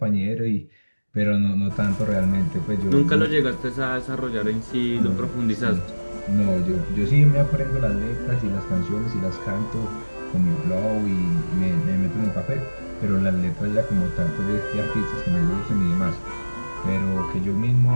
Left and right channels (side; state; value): both; inverted; correlation -1.00